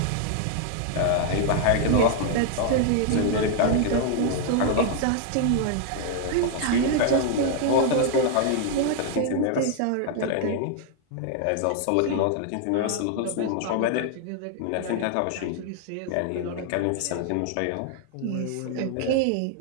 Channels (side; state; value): both; different; correlation 0.00